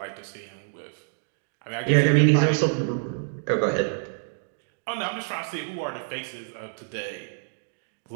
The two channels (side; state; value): left; silent; digital silence